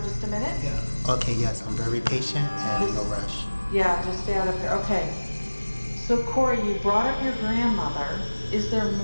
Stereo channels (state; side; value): inverted; both; correlation -1.00